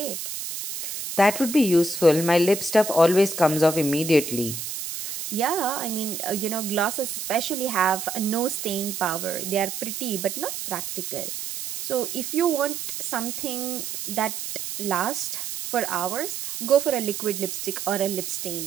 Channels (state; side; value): noise; right; hiss, 6 dB below the sound